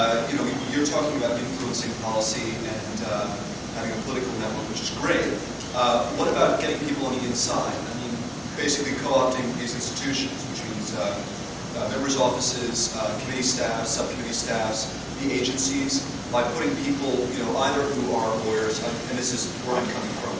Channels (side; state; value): both; identical; correlation 1.00